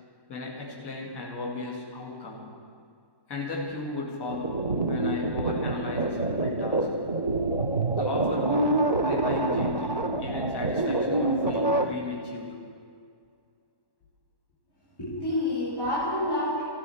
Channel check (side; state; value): right; late; 1.1 ms